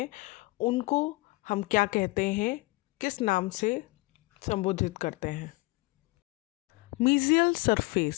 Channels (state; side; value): quieter; right; 23.5 dB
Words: उनको हम क्या कहते हैं, किस नाम से संबोधित करते हैं। मीजियल